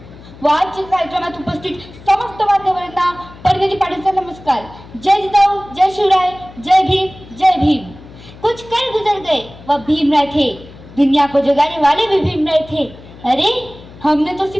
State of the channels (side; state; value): left; noise; hum, 19 dB below the sound